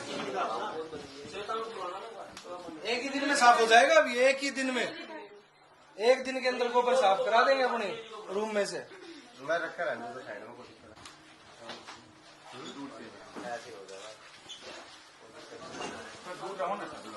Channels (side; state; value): both; identical; correlation 1.00